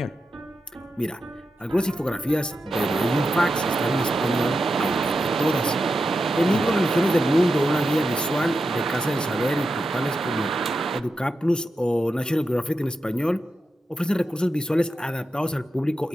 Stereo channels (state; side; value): normal; both; correlation 0.88